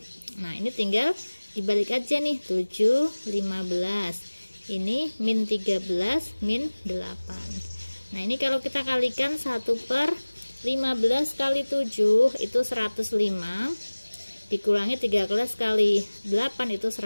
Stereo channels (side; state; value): both; inverted; correlation -1.00